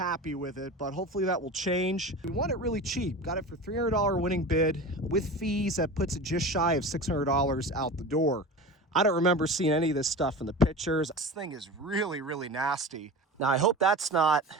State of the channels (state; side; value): normal; both; correlation 0.32